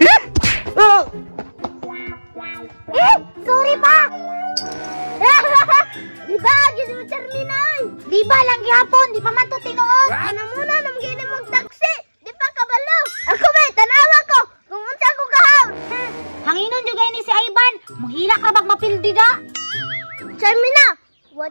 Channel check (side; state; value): both; inverted; correlation -1.00